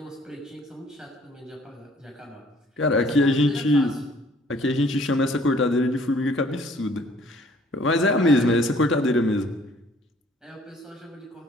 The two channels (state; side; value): normal; both; correlation 0.58